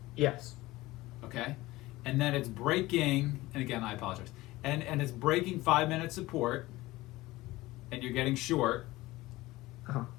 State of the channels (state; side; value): quieter; right; 18.9 dB